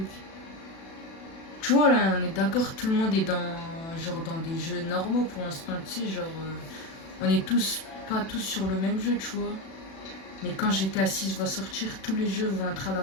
Tu vois là, on est d'accord, tout le monde est dans des jeux normaux pour l'instant, tu sais, genre on est pas tous sur le même jeu, tu vois. Mais quand GTA 6 va sortir, tous les jeux vont être à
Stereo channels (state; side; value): late; right; 36 ms